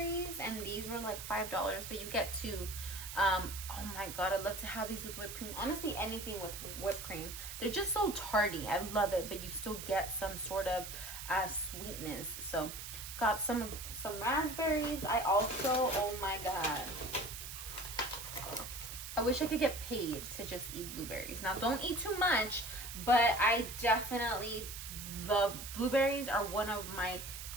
and these were like $5, but you get two. Oh my god, I'd love to have these with whipped cream. Honestly, anything with whipped cream. They're just so tarty. I love it, but you still get some sort of sweetness. So got some raspberries. I also, oh my god, I wish I could get paid to just eat blueberries. Now, don't eat too much, but I definitely love blueberries. Are one of my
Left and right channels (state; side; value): noise; right; hiss, 9 dB below the sound